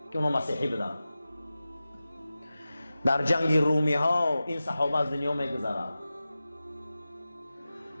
که اونا مسیحی بودن. در جنگ رومی ها این صحابه از دنیا میگذرد.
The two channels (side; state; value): both; inverted; correlation -0.95